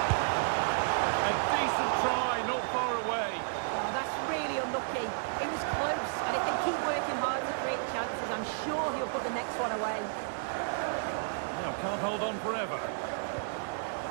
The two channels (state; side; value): silent; left; digital silence